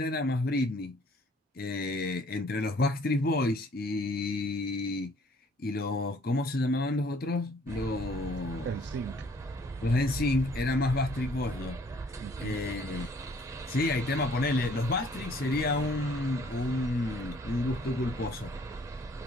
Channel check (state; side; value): normal; both; correlation 0.59